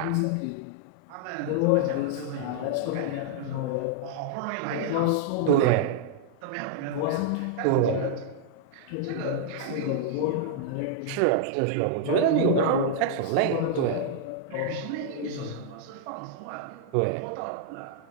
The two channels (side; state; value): both; different; correlation -0.01